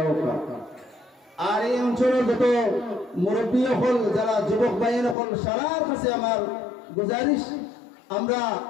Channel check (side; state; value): right; drops out; at 5.2 s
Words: आओ का আর এই অঞ্চলের যত মুরব্বী হল যারা যুবক ভাইয়ের হল সারার কাছে আমার গুজারিশ আমরা